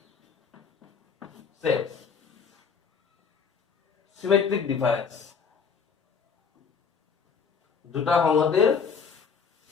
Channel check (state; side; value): quieter; right; 6.0 dB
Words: sets symmetric difference দুটা সংহতিৰ